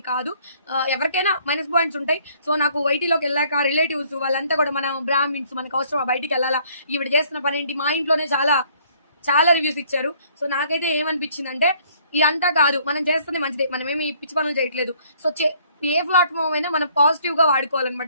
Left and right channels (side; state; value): both; inverted; correlation -0.61